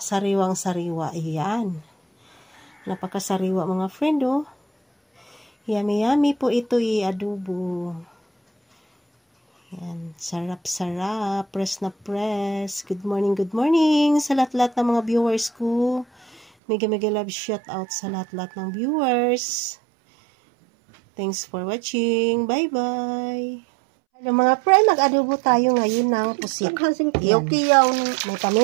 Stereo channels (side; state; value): left; drops out; at 16.4 s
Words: sariwa. Ayan. Napakasariwa mga friend oh. Yummy yummy po ito i-adobo. Yan, sarap-sarap. Press na press. Good morning sa lahat-lahat ng mga viewers ko. Mega love shout out sa lahat-lahat ng viewers. Thanks for watching. Bye-bye. Hello mga friend, mag-adobo tayo ngayon ng pusit. Kiyaw-kiyaw. May